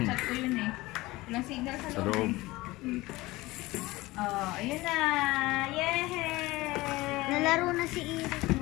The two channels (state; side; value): quieter; right; 19.9 dB